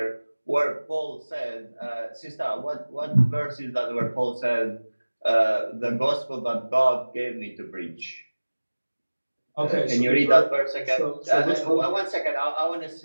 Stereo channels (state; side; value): inverted; both; correlation -1.00